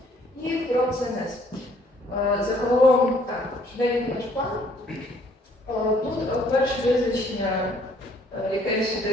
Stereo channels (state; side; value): normal; both; correlation 0.62